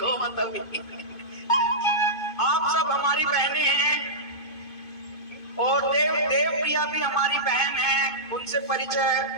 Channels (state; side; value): late; right; 2.5 ms